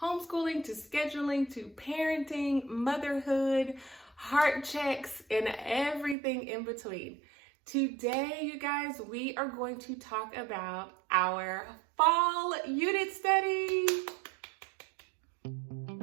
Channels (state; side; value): drops out; left; at 6.2 s